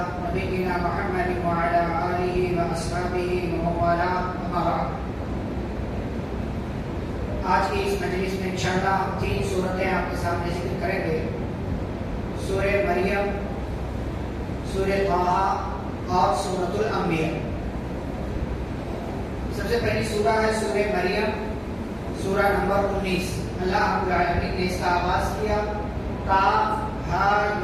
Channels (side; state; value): both; identical; correlation 1.00